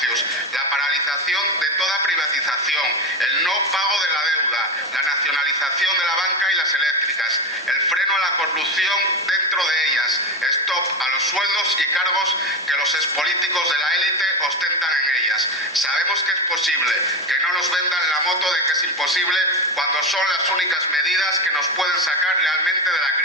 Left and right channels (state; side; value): normal; both; correlation 0.17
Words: la paralización de toda privatización, el no pago de la deuda, la nacionalización de la banca y las eléctricas, el freno a la corrupción dentro de ellas, stop a los sueldos y cargos que los expolíticos de la élite ostentan en ellas. Sabemos que es posible, que no nos vendan la moto de que es imposible cuando son las únicas medidas que nos pueden sacar realmente de la